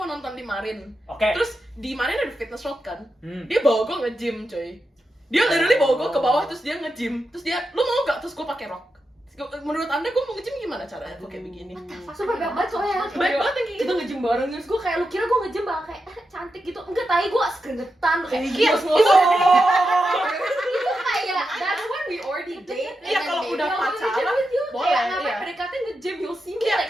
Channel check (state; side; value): normal; both; correlation 0.88